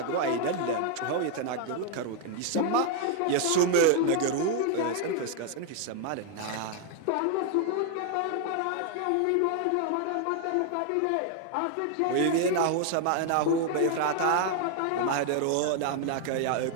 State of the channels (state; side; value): different; both; correlation 0.00